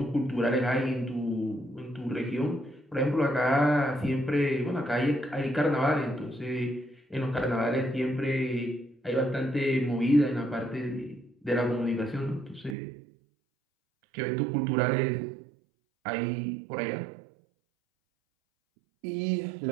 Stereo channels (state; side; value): drops out; left; at 12.8 s